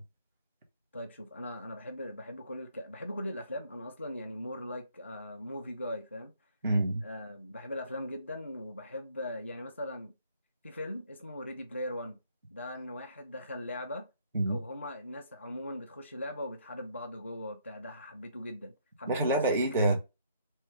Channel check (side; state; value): both; inverted; correlation -0.65